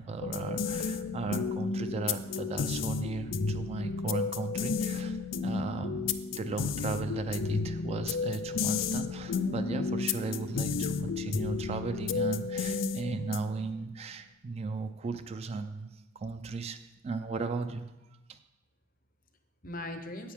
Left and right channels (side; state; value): both; normal; correlation 0.49